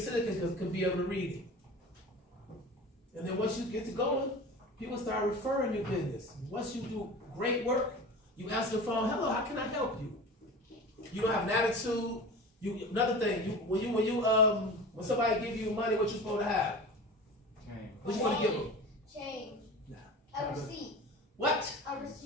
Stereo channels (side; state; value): both; normal; correlation 0.34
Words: can be able to read it. And then once you get to going, people start referring your business. Once you do great work, you answer the phone, hello, how can I help you? You don't have an attitude. Another thing, when When somebody give you money, what you supposed to have? What you want to give them? Change. Nah. A receipt. What? A